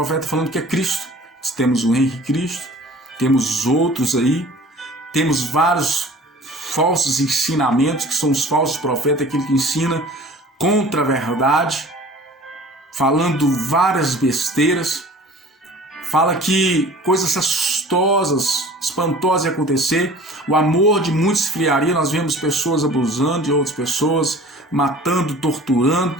falando que é Cristo. Temos o Henrique Cristo, temos outros aí, temos vários falsos ensinamentos, que são os falsos profetas, aquele que ensina contra a verdade, falando várias besteiras, fala que coisas assustosas, espantosas iam acontecer, o amor de muitos esfriaria, nós vemos pessoas abusando de outras pessoas, matando,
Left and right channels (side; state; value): both; normal; correlation 0.45